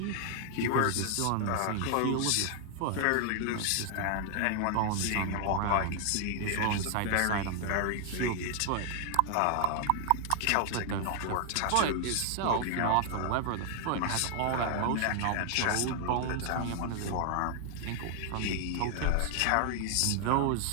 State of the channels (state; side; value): different; both; correlation 0.00